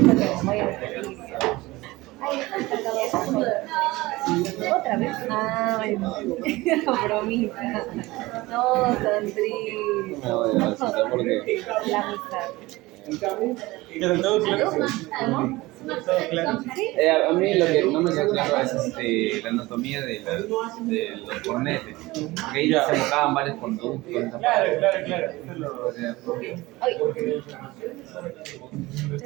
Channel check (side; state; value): left; quieter; 20.2 dB